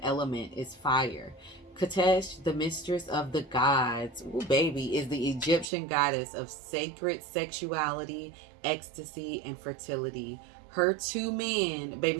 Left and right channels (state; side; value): drops out; left; at 5.7 s